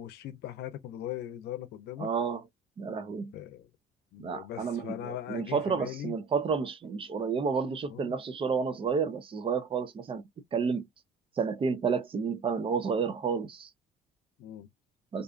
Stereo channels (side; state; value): left; quieter; 4.4 dB